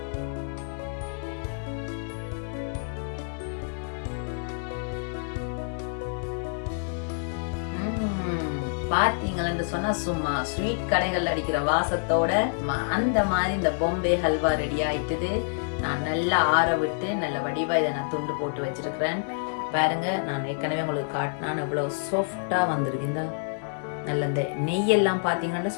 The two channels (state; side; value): silent; right; 60 dB below the other